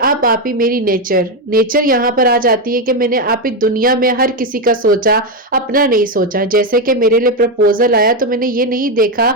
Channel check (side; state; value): both; normal; correlation 0.07